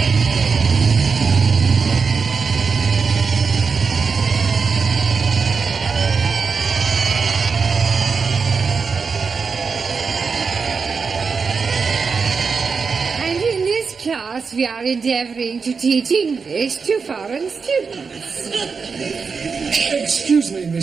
Class, we are endeavouring to teach English to foreign students. Excuse me,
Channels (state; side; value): quieter; left; 5.2 dB